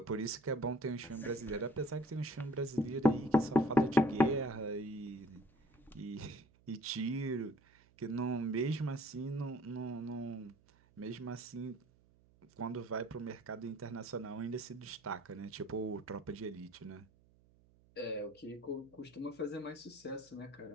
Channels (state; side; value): noise; right; hum, 29 dB below the sound